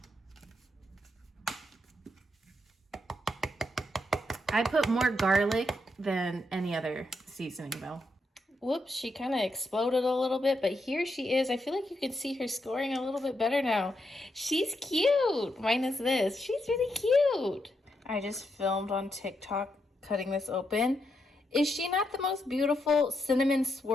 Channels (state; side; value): normal; both; correlation 0.81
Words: I put more garlic than any other seasoning though. Whoops, she kind of exploded a little bit, but here she is. I feel like you can see her scoring a little bit better now. She's cute, minus this. She's really cute. I just filmed on TikTok cutting this open. Is she not the most beautiful cinnamon